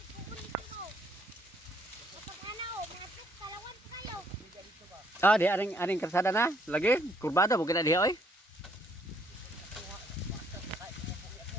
Ah, di aring kalsada na. Lagi kurbada bukan dia oi.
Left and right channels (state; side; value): normal; both; correlation 0.67